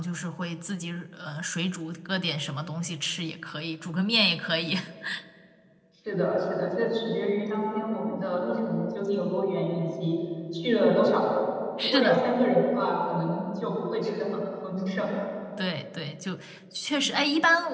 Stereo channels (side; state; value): both; identical; correlation 1.00